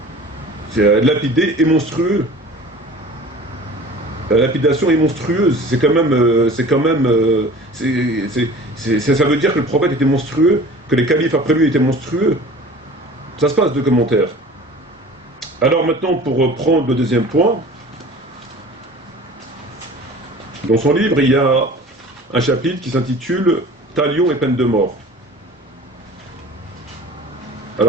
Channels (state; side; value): normal; both; correlation 0.42